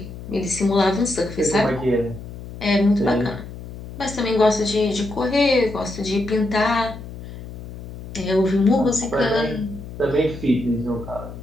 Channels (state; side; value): noise; left; hum, 12 dB below the sound